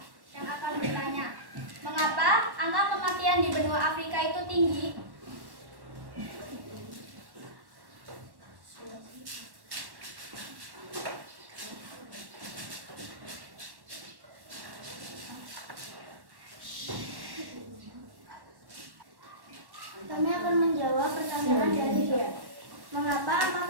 yang akan bertanya. Mengapa angka kematian di benua Afrika itu tinggi? Kami akan menjawab pertanyaan dari dia. Mengapa angka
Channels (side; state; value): left; late; 1.1 ms